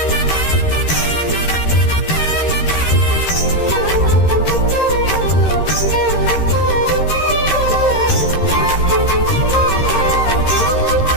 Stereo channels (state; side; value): late; right; 13 ms